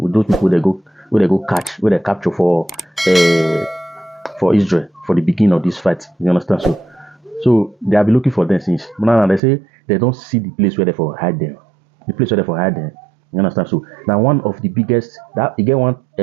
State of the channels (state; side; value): drops out; left; at 9.4 s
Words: with those people they go catch, where they capture for Israel for the beginning of this fight. You understand? So they have been looking for them since. But now they say they don't see the place where they for hide them. The place where they for hide them. You understand? So now one of the biggest that you get one